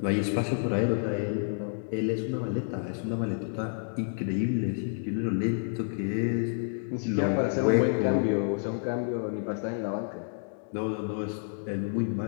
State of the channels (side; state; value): right; silent; digital silence